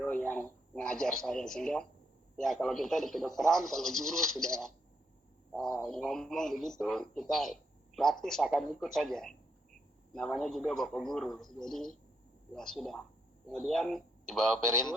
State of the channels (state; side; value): normal; both; correlation 0.77